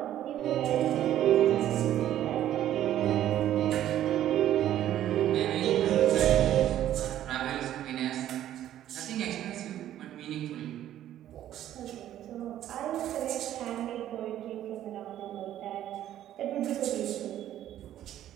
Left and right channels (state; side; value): quieter; left; 12.1 dB